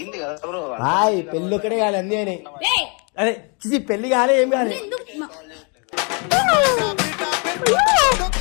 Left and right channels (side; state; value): right; quieter; 35.0 dB